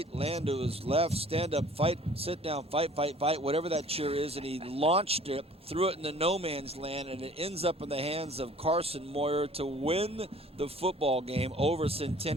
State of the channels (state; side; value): normal; both; correlation 0.51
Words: ran to his left, stand up, fight, sit down, fight, whatever that cheer is, and he launched it, threw it into no man's land, and it ends up in the hands of Carson Moyer to win the football game over